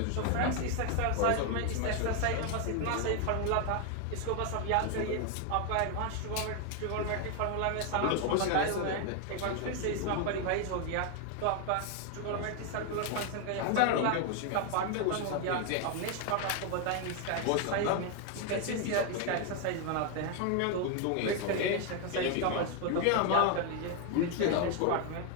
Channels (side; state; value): both; different; correlation 0.01